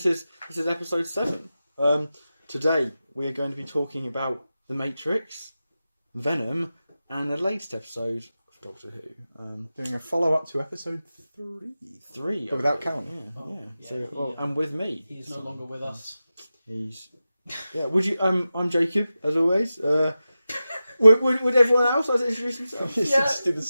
is episode 7. Today we are going to be talking about The Matrix, Venom, and the latest episode of Doctor Who. Doing a follow-up to episode 3. But without Callum. Yeah. So, and with me. He's no longer with us. Would you? I'm Jacob, as always. Would everyone else like to introduce themselves? Just do the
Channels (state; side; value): inverted; both; correlation -0.93